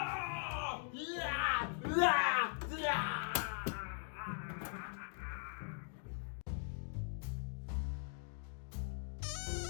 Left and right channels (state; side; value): silent; right; 50 dB below the other